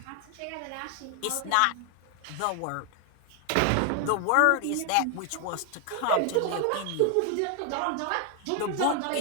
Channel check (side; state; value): both; different; correlation 0.00